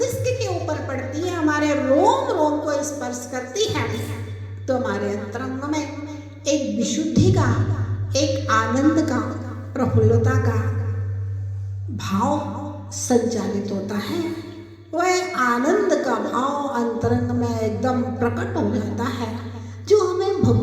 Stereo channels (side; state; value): both; identical; correlation 1.00